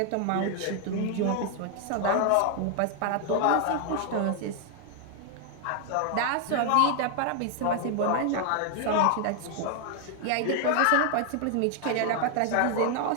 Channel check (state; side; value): different; both; correlation 0.00